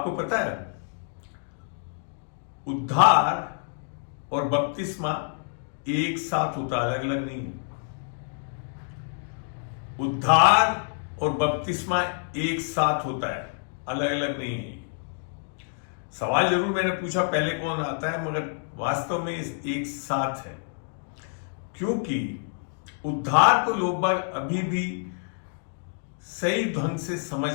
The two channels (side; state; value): right; silent; 60 dB below the other